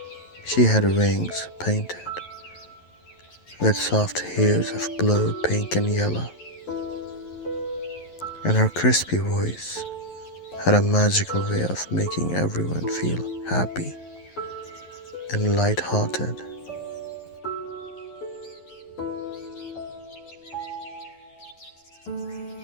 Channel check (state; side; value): late; right; 11 ms